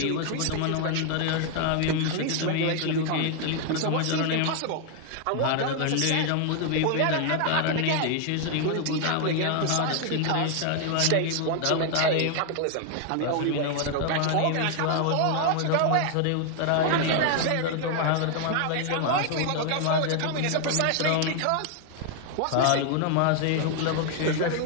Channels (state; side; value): different; both; correlation 0.00